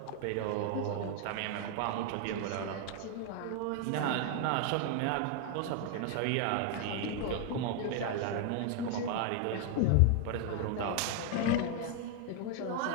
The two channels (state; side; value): different; both; correlation 0.00